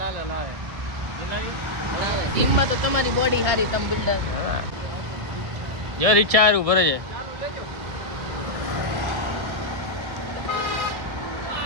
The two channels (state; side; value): late; left; 1.6 ms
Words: લાલો લાવે જીમમાં તો તમારી બોડી સારી તમે બિલ્ડર. હા જો રિક્ષા હારું ભરે છે